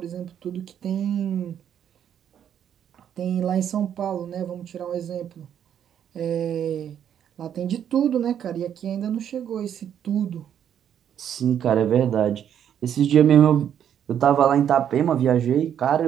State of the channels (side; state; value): left; quieter; 9.3 dB